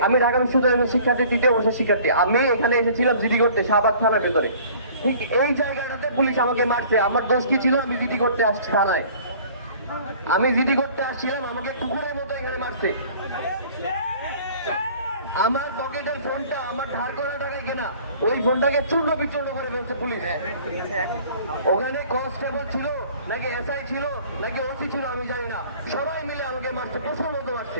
আমি ঢাকা বিশ্ববিদ্যালয়ের শিক্ষার্থী, 3য় বর্ষের শিক্ষার্থী। আমি এখানে এসেছিলাম জিডি করতে, শাহবাগ থানার ভেতরে। ঠিক এই জায়গাটাতে পুলিশ আমাকে মারছে। আমার দোষ কি ছিল? আমি জিডি করতে আসছি থানায়, আমি জিডি করতে আসছিলাম, আমাকে কুকুরের মতো এখানে মারছে। আমার পকেটের ফোনটা, আমার ধার করা টাকায় কেনা, ওই ফোনটাকে চূর্ণ বিচূর্ণ করে ফেলছে পুলিশ। ওখানে কনস্টেবল ছিল নাকি এসআই ছিল নাকি ওসি ছিল আমি জানি না, সবাই মিলে আমাকে মারছে, প্রচুর মতো মারছে।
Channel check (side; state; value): both; inverted; correlation -0.50